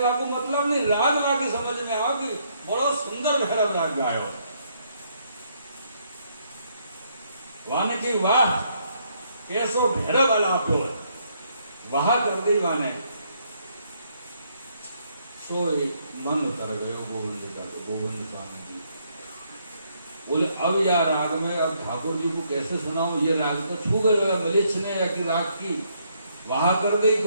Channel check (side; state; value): both; inverted; correlation -0.72